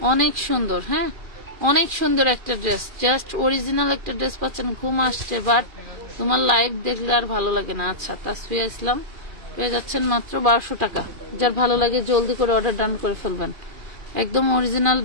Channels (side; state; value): left; late; 2.4 ms